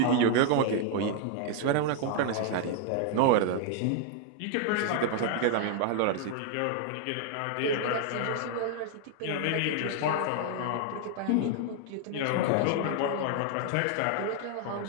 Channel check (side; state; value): both; different; correlation 0.00